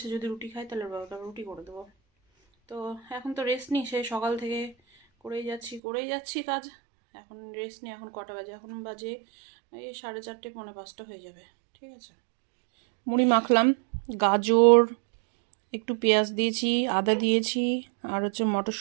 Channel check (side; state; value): left; drops out; at 5.8 s